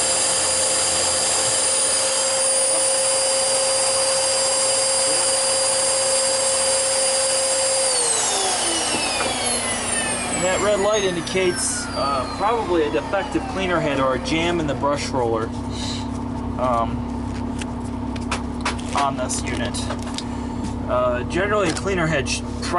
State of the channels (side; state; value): both; identical; correlation 1.00